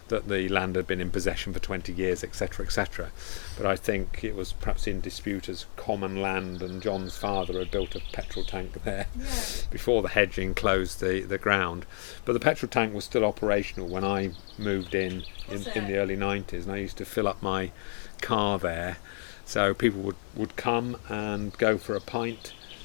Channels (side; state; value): right; silent; digital silence